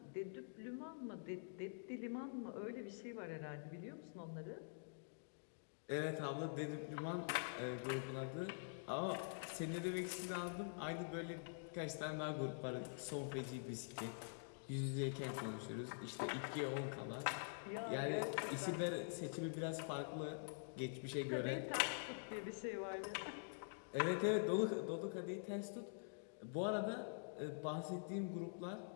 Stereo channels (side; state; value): right; silent; digital silence